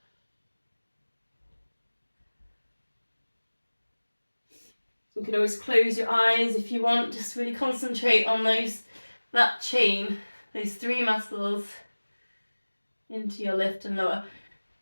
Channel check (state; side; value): inverted; both; correlation -1.00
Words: You can always close your eyes if you want, just really concentrate on that chain, those three muscles into your lift and lower.